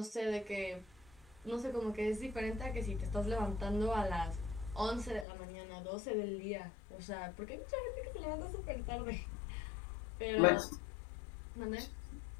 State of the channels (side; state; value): right; drops out; at 5.2 s